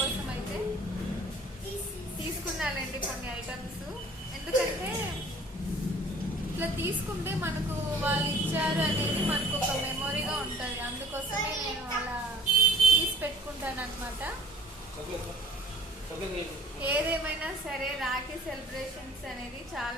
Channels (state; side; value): normal; both; correlation 0.52